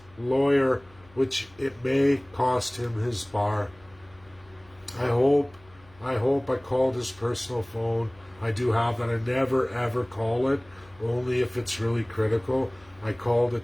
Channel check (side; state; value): left; noise; hum, 27 dB below the sound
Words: lawyer, which it may cost him his bar. I hope I called his personal phone. I do have that. I never ever call it, only if it's really critical. I called it